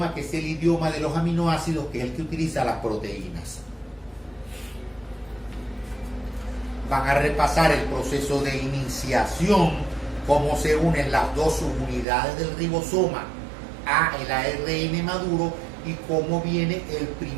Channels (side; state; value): left; drops out; at 12.1 s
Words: que es el idioma de los aminoácidos, que es el que utiliza las proteínas. Van a repasar el proceso de iniciación, cómo se unen las dos subunidades del ribosoma a el ARN maduro y cómo viene el